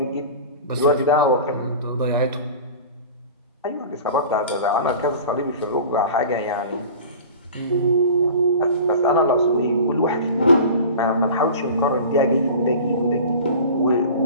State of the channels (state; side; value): inverted; both; correlation -0.38